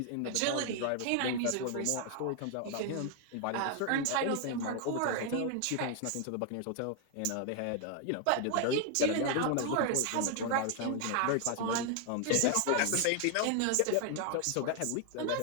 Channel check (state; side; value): different; both; correlation 0.00